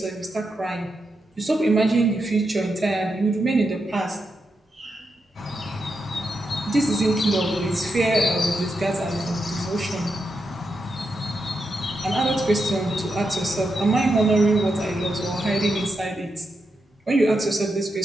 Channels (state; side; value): normal; both; correlation 0.85